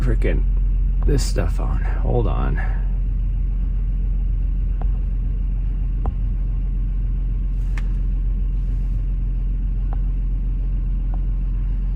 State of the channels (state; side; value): identical; both; correlation 1.00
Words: this stuff on. Hold on.